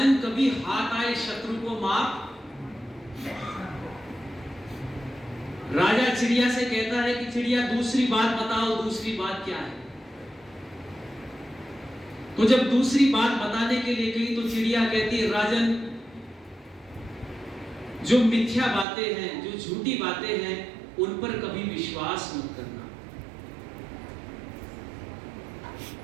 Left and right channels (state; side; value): drops out; left; at 18.9 s